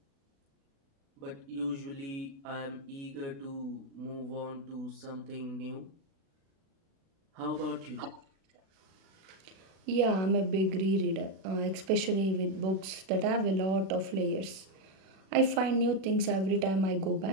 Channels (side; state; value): left; late; 36 ms